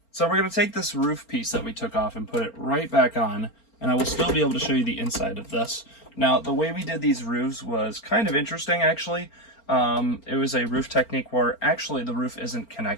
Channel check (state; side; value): late; right; 4.4 ms